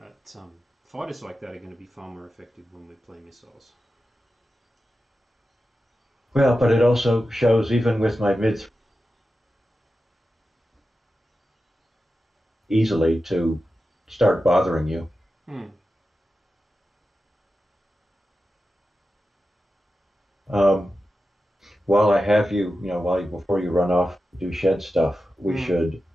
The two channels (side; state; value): both; normal; correlation 0.92